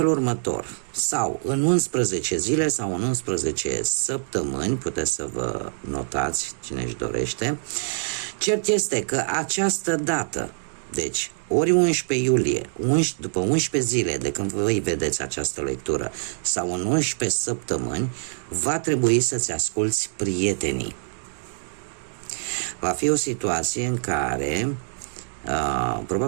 următor. Sau în 11 zile sau în 11 săptămâni, puteți să vă notați cine își dorește. Cert este că această dată, deci ori 11 iulie, după 11 zile de când voi vedeți această lectură, sau în 11 săptămâni, va trebui să-ți asculți prietenii. Va fi o situație în care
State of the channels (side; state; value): left; silent; digital silence